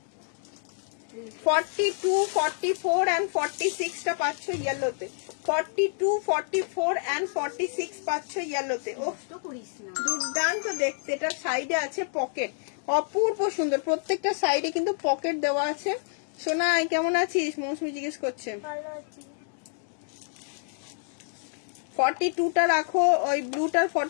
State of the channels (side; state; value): right; silent; digital silence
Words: 42 44 and 46 টা পাচ্ছ ইয়েলোতে। 42 44 and 46 পাচ্ছ ইয়েলোতে। ও দুর্দান্ত দেখতে। এটা সাইডে আছে পকেট, অপূর্ব সুন্দর। প্রত্যেকটা সাইডে কিন্তু পকেট দেওয়া আছে। সোনা কেমন আছিস? মৌসুমি জিজ্ঞেস করছে। 42টা রাখো, ওই ব্লুটার